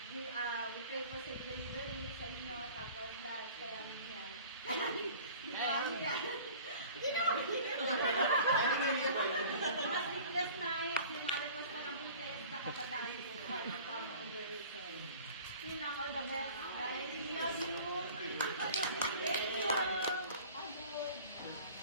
We pray for safe delivery sa inyo, tapos lahat kaya yan. Mas sleepless night, yung mga request na ng weekend, nakapatay ko sa under reason. Yun lang, all the best, guys. We love you. Thank you. Pagod,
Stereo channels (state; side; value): inverted; both; correlation -0.45